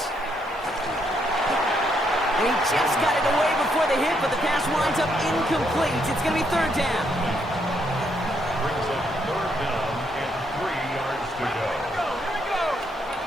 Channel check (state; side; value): normal; both; correlation 0.74